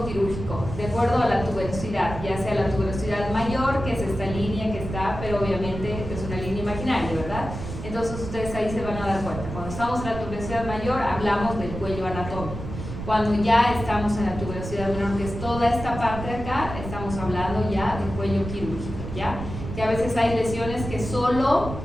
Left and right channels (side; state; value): right; noise; rumble, 8 dB below the sound